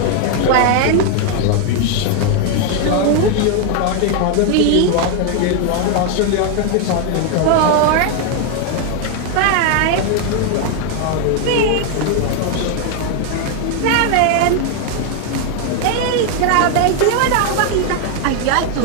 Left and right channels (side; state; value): both; different; correlation 0.00